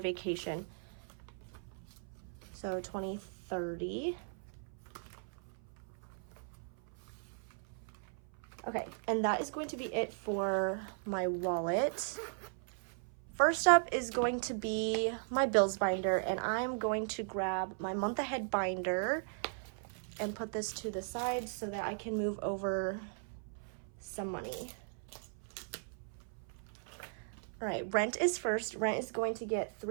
So 20, 30. Okay, and that is going to be it for my wallet. First up is going to be my bills binder, and I'm going to grab my month ahead binder and put this to the side so that I can move over some money. All right, rent is first. Rent is going to get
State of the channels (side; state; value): left; silent; 53 dB below the other